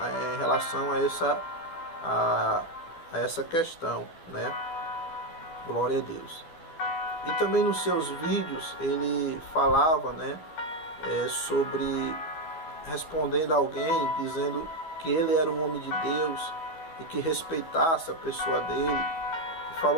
relação a essa questão, Glória a Deus. E também nos seus vídeos ele falava, sobre respondendo a alguém, dizendo que ele era um homem de Deus e que respeitasse a pessoa dele. E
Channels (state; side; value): late; right; 12 ms